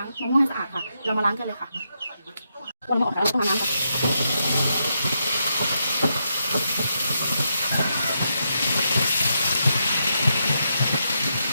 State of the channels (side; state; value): both; inverted; correlation -0.82